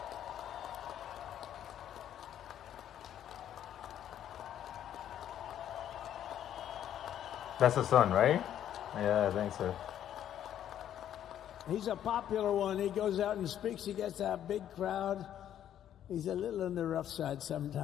That's the son, right? Yeah, I think so. He's a popular one. He goes out and speaks. He gets a big crowd. He's a little on the rough side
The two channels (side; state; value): right; quieter; 10.6 dB